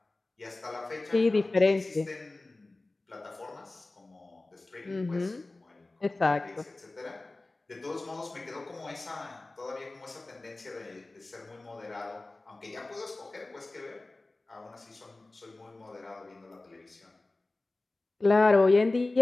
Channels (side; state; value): right; quieter; 3.0 dB